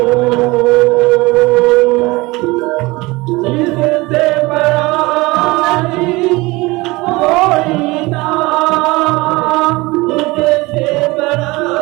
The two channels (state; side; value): quieter; left; 22.4 dB